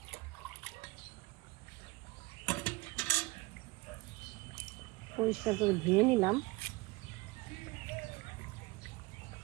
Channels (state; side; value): quieter; left; 22.9 dB